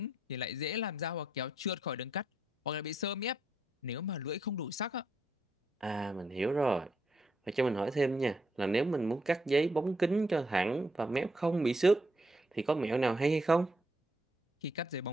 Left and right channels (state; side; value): normal; both; correlation 0.76